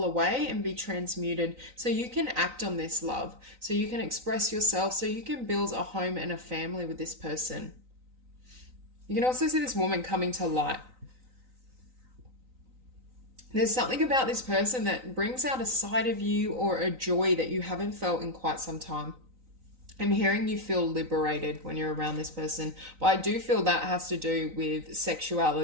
away and be transmuted so you can act on this love, so you can express yourself, so you can build a home and a family with this person. You can also see this woman coming to light. There's something about this person that brings out a side of you or a joy that you haven't felt in quite some time. I'm hearing you feel liberated when you're around this person, but I do feel that has to do with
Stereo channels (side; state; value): left; late; 3.9 ms